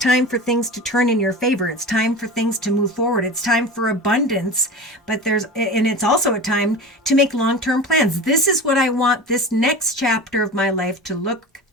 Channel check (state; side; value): normal; both; correlation 0.31